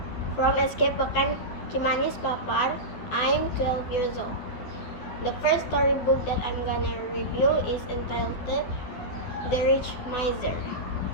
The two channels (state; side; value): late; right; 12 ms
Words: from Escape Pekan Cimanis Papar. I'm 12 years old. The first storybook that I'm gonna review is entitled The Rich Miser.